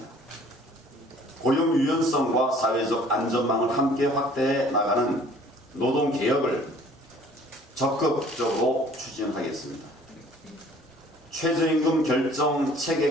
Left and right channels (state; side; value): normal; both; correlation 0.53